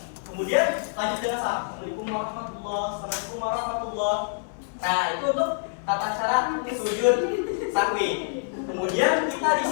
Kemudian lanjut dengan salam. Assalamualaikum warahmatullahi. Nah, itu untuk tata cara sujud syahwi. Kemudian kita di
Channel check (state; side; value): silent; right; 61 dB below the other